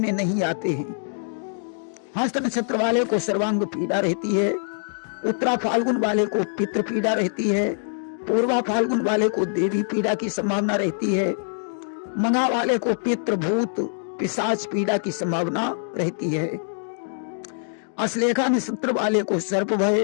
नहीं आते हैं। हस्त नक्षत्र वाले को सर्वांग पीड़ा रहती है। उत्तरा फाल्गुन वाले को पितृ पीड़ा रहती है। पूर्वा फाल्गुन वाले को देवी पीड़ा की संभावना रहती है। मघा वाले को पितृ, भूत, पिशाच पीड़ा की संभावना रहती है। अश्लेषा नक्षत्र वाले को सर्प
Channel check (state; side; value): silent; right; digital silence